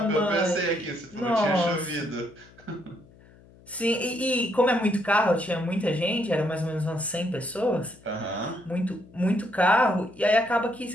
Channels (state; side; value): noise; left; hum, 25 dB below the sound